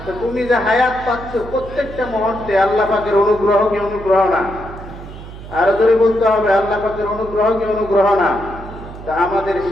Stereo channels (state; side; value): noise; right; hum, 14 dB below the sound